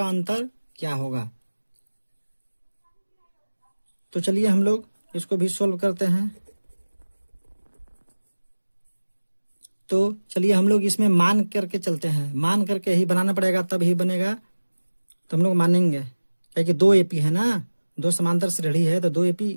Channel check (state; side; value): inverted; both; correlation -1.00